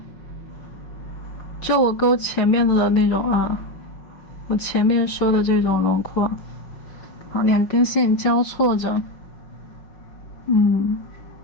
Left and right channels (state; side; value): late; right; 5.5 ms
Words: 就我勾前面的那种我前面收的这种轮廓。好，两根线交错着，